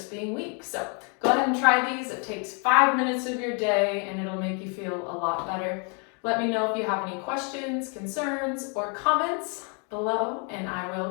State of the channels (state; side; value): quieter; right; 37.3 dB